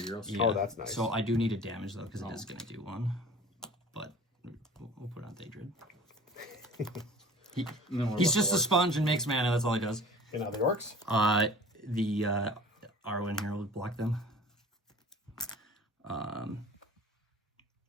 heroes? yeah. Oh, that's nice. So I do need a damage though, because it is going to do 1. But we'll put on Daedrid. He's just a sponge and makes mana. That's all he does. Okay, now the orcs. The Arwen here will block them.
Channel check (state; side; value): normal; both; correlation 0.44